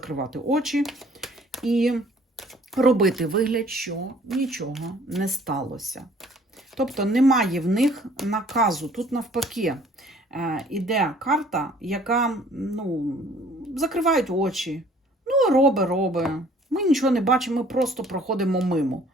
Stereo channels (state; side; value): normal; both; correlation 0.56